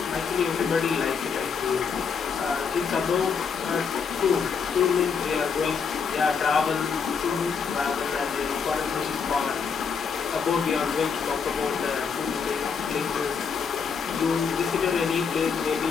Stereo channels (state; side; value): quieter; right; 6.0 dB